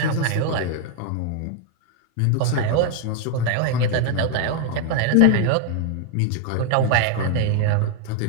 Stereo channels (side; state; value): both; different; correlation 0.00